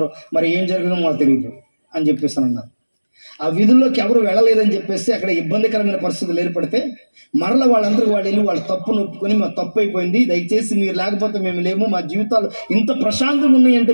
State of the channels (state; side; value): inverted; both; correlation -1.00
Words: మరి ఏం జరిగిందో మాకు తెలియదు అని చెప్పేసి అన్నారు. ఆ వీధుల్లోకి ఎవరు వెళ్ళలేదని చెప్పేసి అక్కడ ఇబ్బందికరమైన పరిస్థితులు ఏర్పడితే మరలా వాళ్ళందరూ వాళ్ళు వెళ్ళి వాళ్ళ తప్పును ఒప్పుకొని మా తప్పు అయిపోయింది, దయచేసి మీరు లేకపోతే మేము లేము, మా జీవితాలు ఇంత ప్రశాంతంగా ఉన్నాయంటే